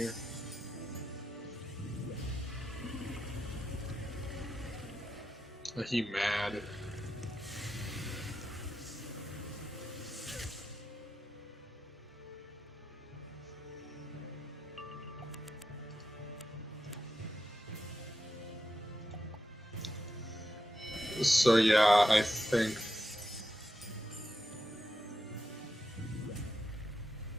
Are he mad? So yeah, I think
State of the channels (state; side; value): normal; both; correlation 0.88